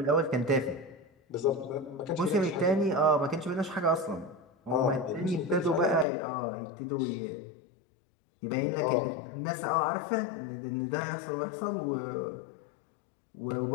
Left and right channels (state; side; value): drops out; right; at 6.1 s